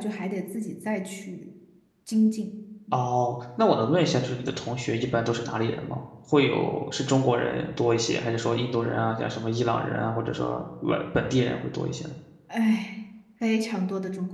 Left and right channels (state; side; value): identical; both; correlation 1.00